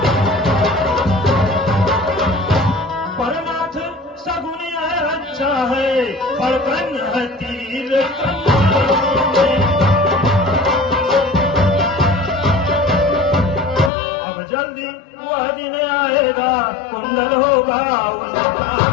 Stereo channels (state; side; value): drops out; right; at 13.9 s